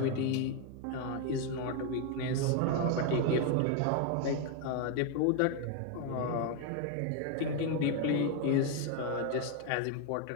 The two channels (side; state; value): both; different; correlation 0.01